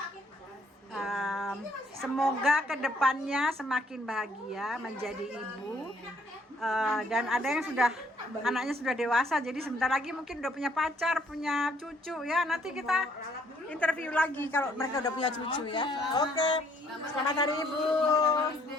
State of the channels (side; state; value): both; normal; correlation 0.65